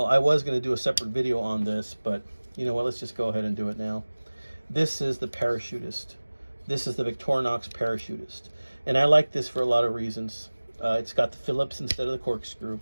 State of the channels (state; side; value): inverted; both; correlation -1.00